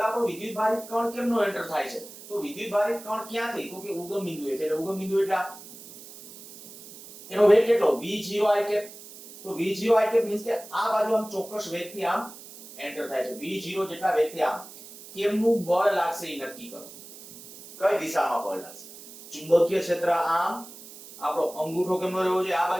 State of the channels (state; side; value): noise; right; hiss, 17 dB below the sound